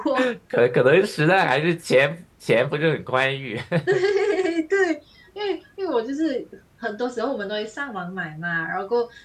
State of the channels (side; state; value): both; identical; correlation 1.00